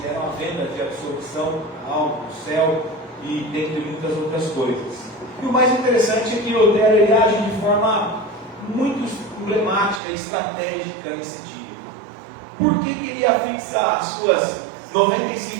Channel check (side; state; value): left; drops out; at 10.0 s